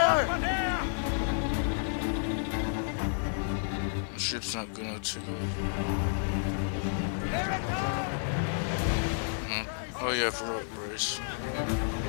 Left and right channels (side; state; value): right; silent; digital silence